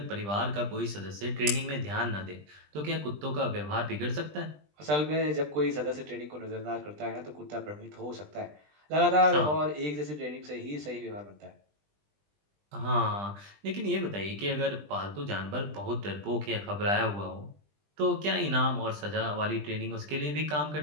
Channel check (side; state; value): left; late; 20 ms